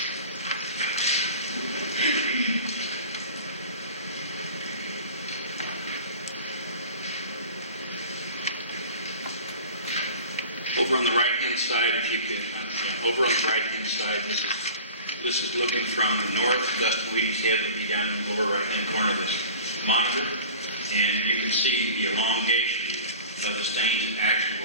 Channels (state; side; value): inverted; both; correlation -0.38